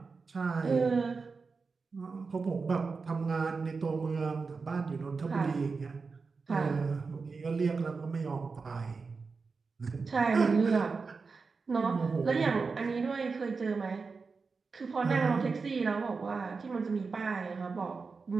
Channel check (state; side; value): quieter; left; 4.6 dB